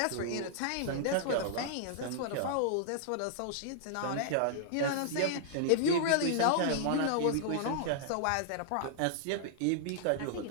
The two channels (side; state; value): both; different; correlation -0.01